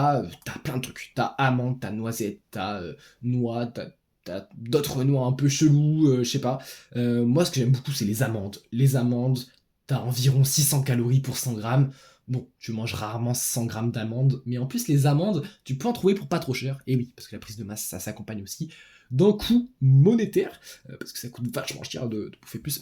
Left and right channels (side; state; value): both; identical; correlation 1.00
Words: plein de trucs. T'as amandes, t'as noisettes, t'as noix, t'as d'autres noix un peu chelous, je sais pas. Moi, ce que j'aime beaucoup, c'est les amandes. Les amandes, t'as environ 600 calories pour 100 grammes. Bon, je mange rarement 100 grammes d'amandes, mais en plus, les amandes, tu peux en trouver pour pas trop cher. Et oui, parce que la prise de masse, ça s'accompagne aussi d'un coût monétaire, parce que ça coûte vachement cher de bouffer